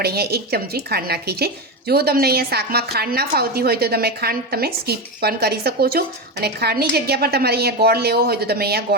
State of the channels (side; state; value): both; normal; correlation 0.15